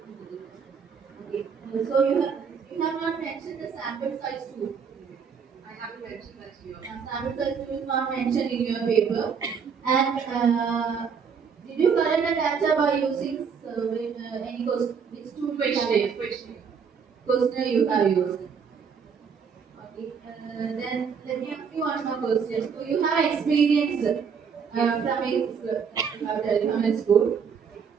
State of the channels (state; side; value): quieter; left; 6.4 dB